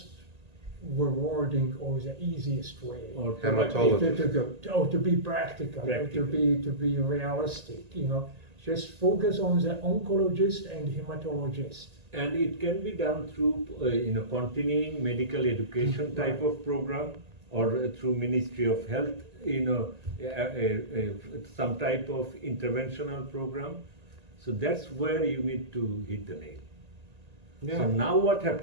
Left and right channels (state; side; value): late; left; 1.8 ms